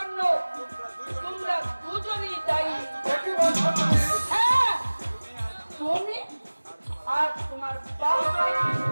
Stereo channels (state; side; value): inverted; both; correlation -1.00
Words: তোমরা দুজনই দায়ী। কি বলছো তুমি? হ্যাঁ, তুমি আর তোমার বাবা।